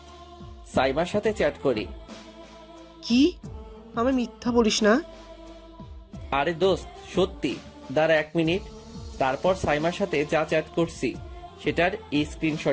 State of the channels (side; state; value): both; identical; correlation 1.00